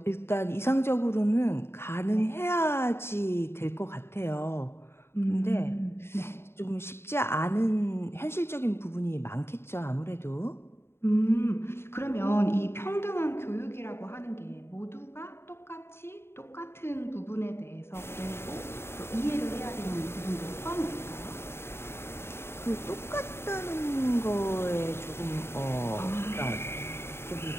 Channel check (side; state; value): right; late; 0.12 ms